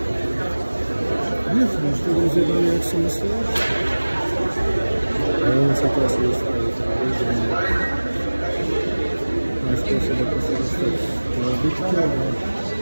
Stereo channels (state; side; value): inverted; both; correlation -1.00